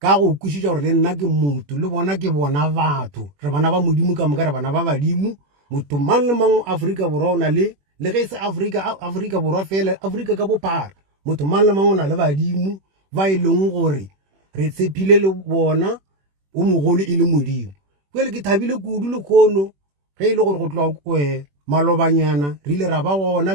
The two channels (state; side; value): late; left; 21 ms